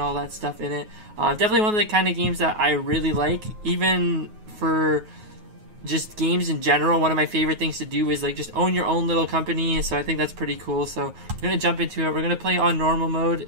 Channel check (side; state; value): left; late; 9.4 ms